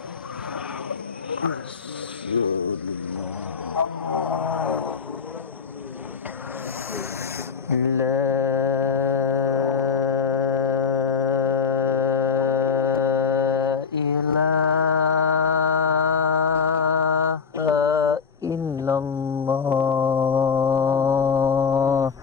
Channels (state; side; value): quieter; right; 5.7 dB